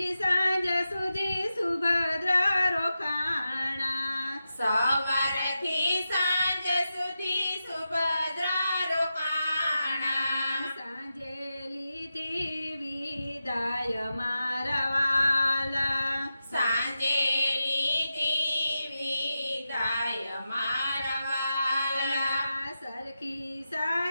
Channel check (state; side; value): inverted; both; correlation -0.90